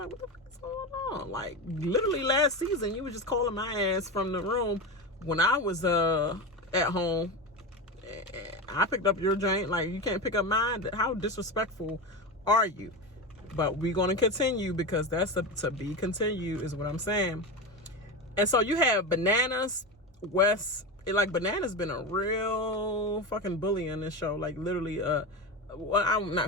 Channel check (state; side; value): normal; both; correlation 0.20